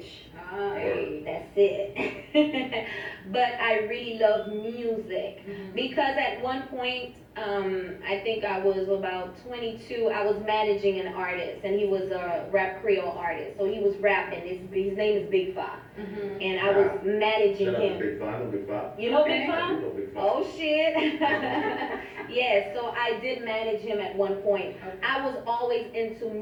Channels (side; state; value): both; identical; correlation 1.00